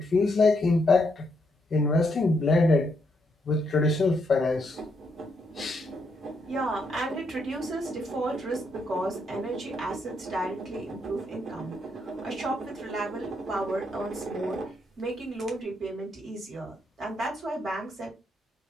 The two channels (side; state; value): both; normal; correlation 0.77